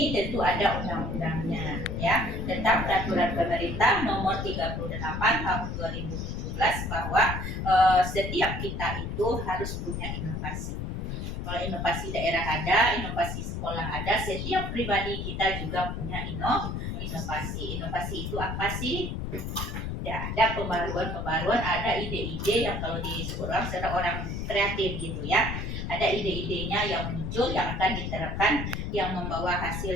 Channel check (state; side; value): noise; left; rumble, 4 dB below the sound